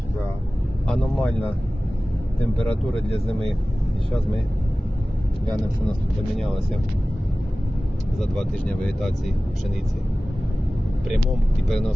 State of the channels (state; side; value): normal; both; correlation 0.97